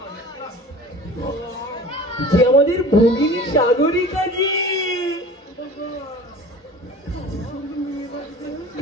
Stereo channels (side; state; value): both; normal; correlation 0.41